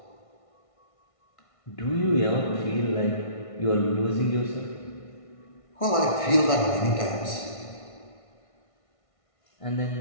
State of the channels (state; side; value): late; right; 1.5 ms